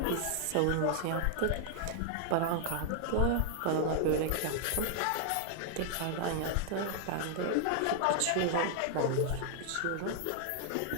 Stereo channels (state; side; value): different; both; correlation 0.00